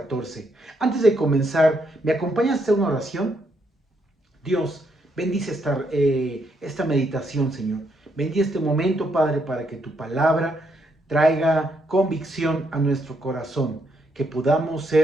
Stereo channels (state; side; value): normal; both; correlation 0.76